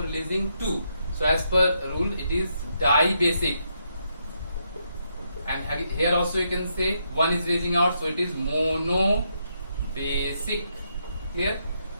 releasing 2. So as per rule, it is dibasic. And here also you can say 1 is releasing out, so it is monobasic. Clear?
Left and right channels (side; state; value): both; inverted; correlation -0.78